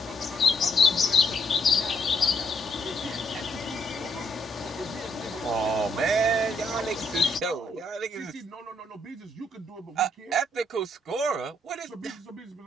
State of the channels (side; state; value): both; normal; correlation 0.72